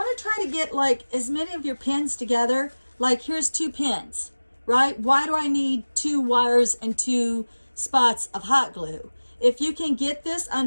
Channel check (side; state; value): both; inverted; correlation -1.00